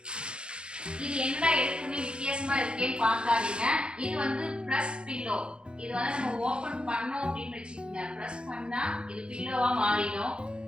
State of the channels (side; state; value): left; late; 0.054 ms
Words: இது என்னடா எடுத்துன்னு வித்தியாசமா இருக்கேன்னு பார்க்காதீங்க இது வந்து ப்ரெஸ் பில்லோ இது வந்து நம்ம ஓபன் பண்ணோம் அப்படின்னு வச்சுக்கோங்க ப்ரெஸ் பண்ணா இது பில்லோவா மாறிடும்